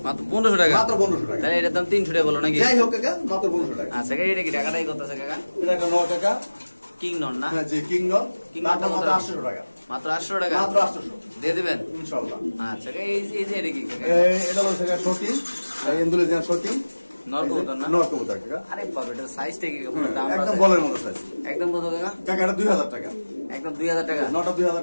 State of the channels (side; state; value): both; inverted; correlation -1.00